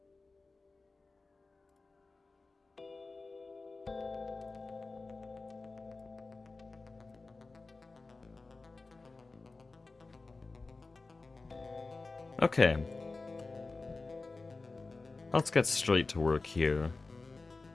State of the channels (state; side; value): quieter; right; 3.7 dB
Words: Okay. Let's get straight to work here.